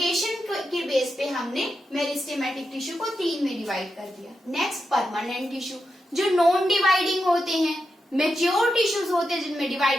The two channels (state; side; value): normal; both; correlation 0.87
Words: के बेस पे हमने मेरिस्टेमेटिक टिश्यू को तीन में डिवाइड कर दिया। नेक्स्ट परमानेंट टिश्यू जो नॉन डिवाइडिंग होते हैं, मेच्योर टिश्यूज होते हैं जिनमें